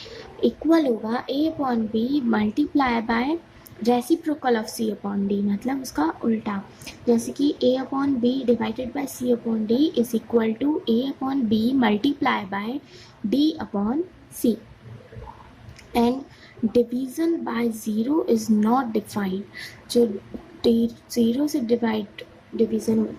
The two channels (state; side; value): identical; both; correlation 1.00